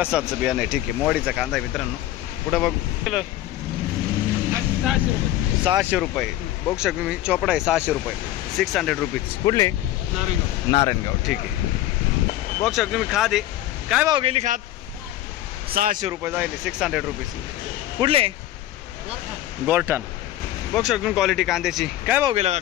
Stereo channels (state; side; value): quieter; right; 14.3 dB